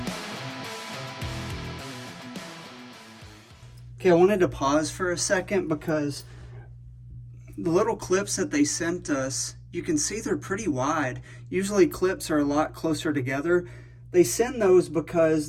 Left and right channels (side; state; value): both; identical; correlation 1.00